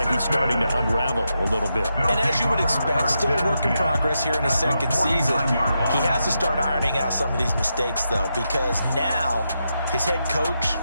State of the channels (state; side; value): inverted; both; correlation -0.85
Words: he's starting to unravel a little bit. And as you would expect, still a work in progress here in his 2nd season. He has to start ironing out some of these mistakes, though, because now his head coach,